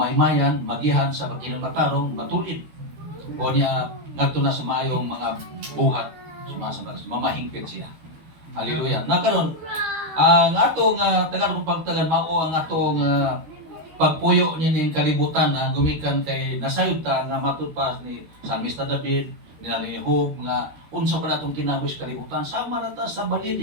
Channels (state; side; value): late; left; 12 ms